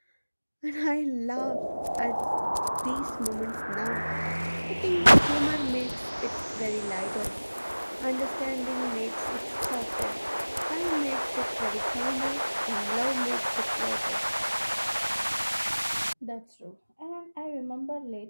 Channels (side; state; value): both; inverted; correlation -1.00